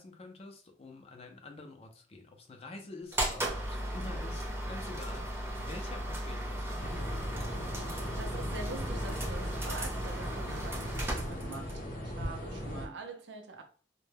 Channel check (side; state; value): both; normal; correlation 0.63